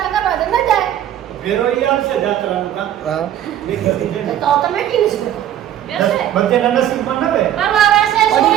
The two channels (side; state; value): left; quieter; 11.3 dB